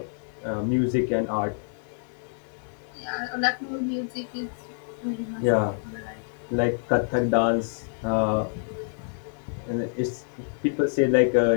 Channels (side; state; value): right; silent; 60 dB below the other